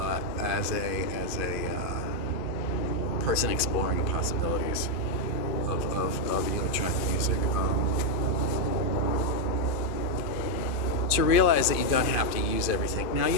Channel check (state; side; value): late; right; 2.5 ms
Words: a person exploring the possibilities of electronic music. To realize that you don't have to use everything. Now,